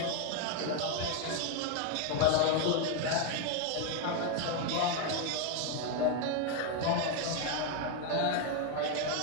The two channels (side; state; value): both; different; correlation 0.01